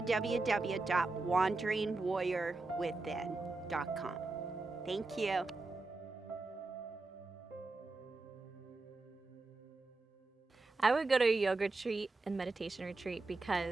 Thank you. I would go to a yoga retreat and meditation retreat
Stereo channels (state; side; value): quieter; left; 3.4 dB